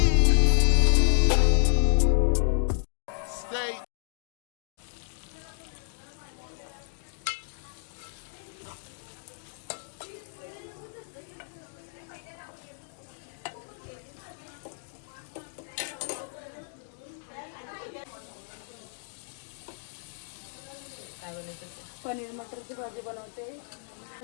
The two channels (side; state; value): right; silent; digital silence